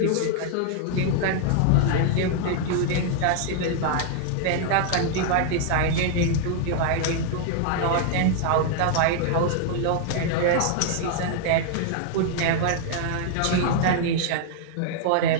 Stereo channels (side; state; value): both; different; correlation 0.00